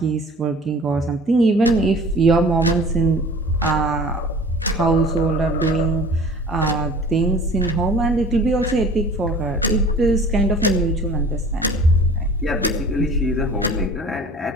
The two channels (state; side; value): normal; both; correlation 0.45